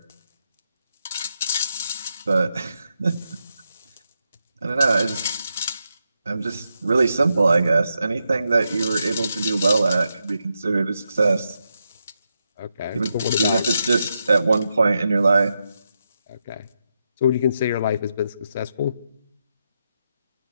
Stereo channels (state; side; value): inverted; both; correlation -0.85